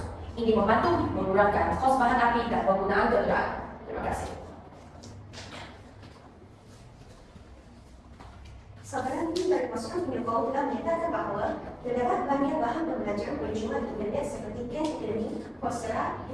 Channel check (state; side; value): identical; both; correlation 1.00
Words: Ini membantu mengurangkan kos bahan api dan penggunaan kendaraan. Terima kasih. Saudara ini dari masukan penyokong telah menyatakan bahawa terdapat banyak bahan pembelajaran percuma di internet seperti Khan Academy, Coursera,